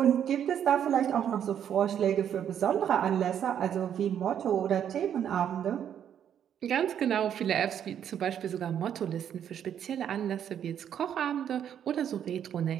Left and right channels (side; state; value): left; quieter; 9.3 dB